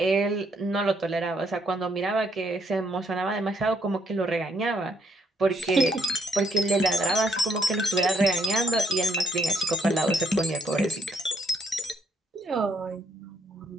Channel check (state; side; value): normal; both; correlation 0.71